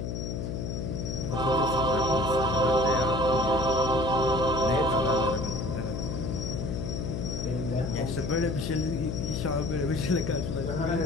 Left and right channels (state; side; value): noise; left; hum, 3 dB below the sound